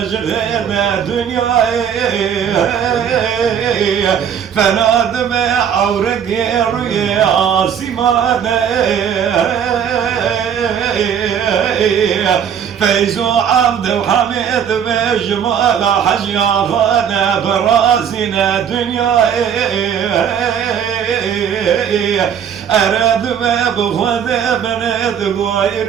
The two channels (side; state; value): left; quieter; 8.3 dB